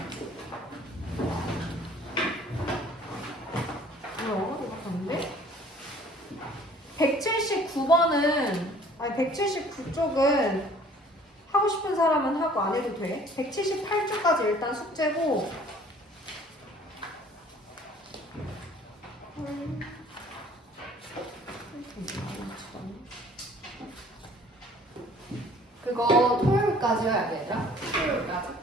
179번은 아니 179쪽은 하고 싶은 사람은 하고 안 해도 돼. 178쪽까지 일단 숙제고 그거 토요일까지 해야 돼, 얘들아. 토요일까지.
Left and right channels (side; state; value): both; normal; correlation 0.54